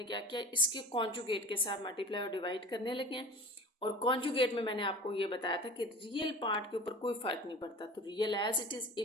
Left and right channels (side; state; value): both; normal; correlation 0.36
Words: क्या किया, इसके कॉन्जुगेट के साथ मल्टीप्लाई और डिवाइड करने लगे हैं। और कॉन्जुगेट में मैंने आपको ये बताया था कि रियल पार्ट के ऊपर कोई फ़र्क नहीं पड़ता, तो real as it is,